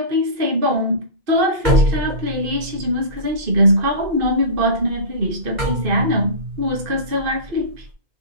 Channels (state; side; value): late; left; 2.5 ms